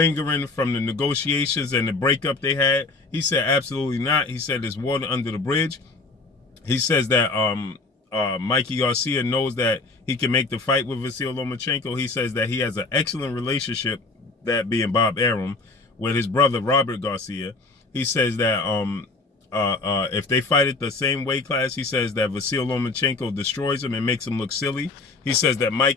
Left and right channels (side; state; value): right; quieter; 3.6 dB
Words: from the negotiations and the breakup they had. He said absolutely not. He said there's water under the bridge. He says that Mikey Garcia knows that he can make the fight with Vasyl Lomachenko. He says that he has an excellent relationship, that being Bob Arum, with his brother Robert Garcia. He says that if they fight at the same weight class, he says that Vasyl Lomachenko destroys him and makes him look silly. He says that